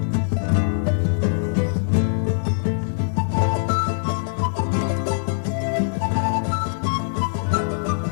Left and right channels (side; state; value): right; silent; digital silence